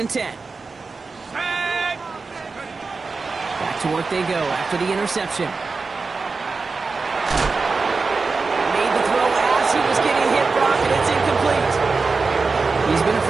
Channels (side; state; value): left; quieter; 4.3 dB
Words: 10. Back to work they go after the interception. Made the throw as he was getting hit, Brock, and it's incomplete. He's been a